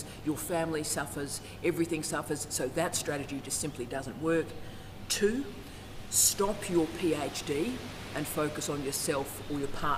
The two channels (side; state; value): both; identical; correlation 1.00